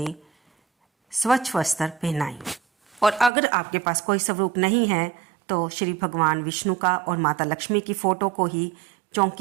स्वच्छ वस्त्र पहनाएं। और अगर आपके पास कोई स्वरूप नहीं है तो श्री भगवान विष्णु का और माता लक्ष्मी की फ़ोटो को ही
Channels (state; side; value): drops out; left; at 3.3 s